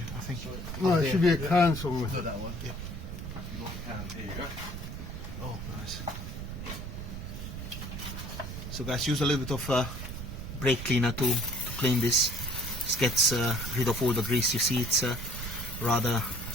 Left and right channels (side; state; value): right; noise; rumble, 7 dB below the sound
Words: I think. No, it should be a can somewhere. No, that one. Yeah. You got a can. Here you go. Oh, nice. So guys, use a little bit of brake cleaner to clean this. This gets rid of all the grease. You see, it's rather